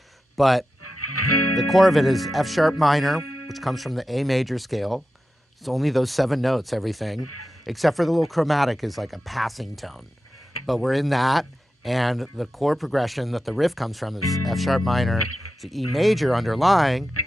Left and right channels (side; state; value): both; normal; correlation 0.91